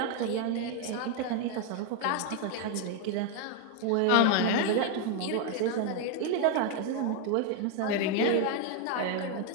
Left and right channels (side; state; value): both; different; correlation 0.01